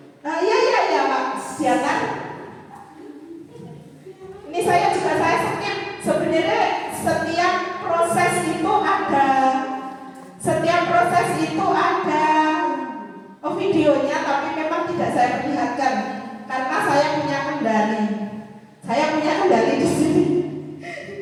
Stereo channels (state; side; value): identical; both; correlation 1.00